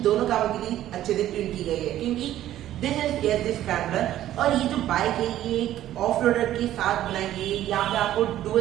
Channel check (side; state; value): left; quieter; 12.9 dB